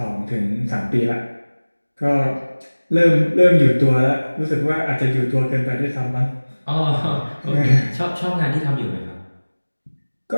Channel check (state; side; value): inverted; both; correlation -1.00